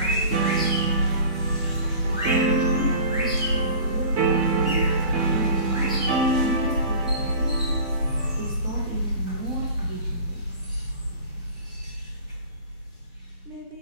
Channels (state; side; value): inverted; both; correlation -0.41